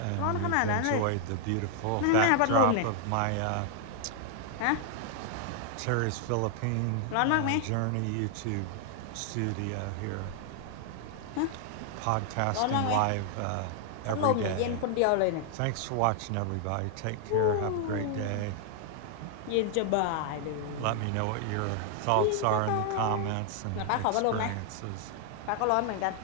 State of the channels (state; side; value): different; both; correlation 0.00